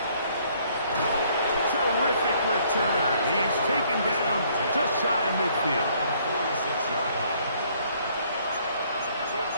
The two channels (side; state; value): both; inverted; correlation -0.63